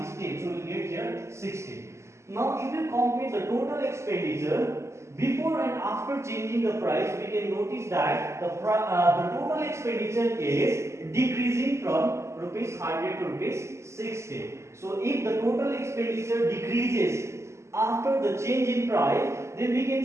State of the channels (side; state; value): left; late; 0.13 ms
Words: is 10. So we will get here 60. Now if you compare the total expenditure before and after changing the price, we can notice that the total expenditure is decreasing from rupees 100 to rupees 60. So if the total expenditure decreases after the change in price, then we can